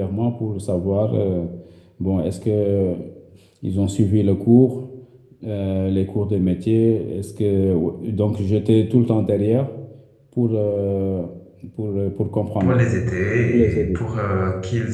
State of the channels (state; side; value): identical; both; correlation 1.00